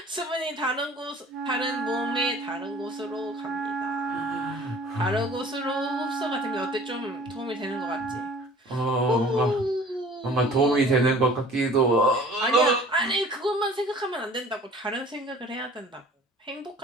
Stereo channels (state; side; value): normal; both; correlation 0.48